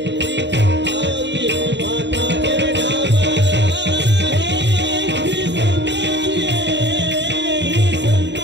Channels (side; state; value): left; late; 0.52 ms